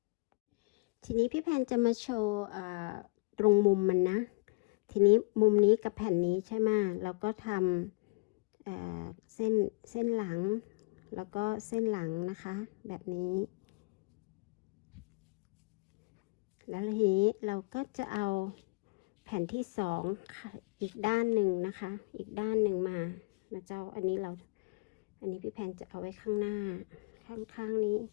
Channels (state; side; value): quieter; right; 28.6 dB